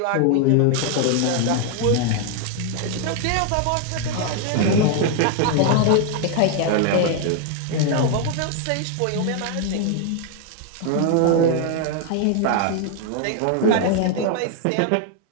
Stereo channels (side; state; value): both; different; correlation 0.01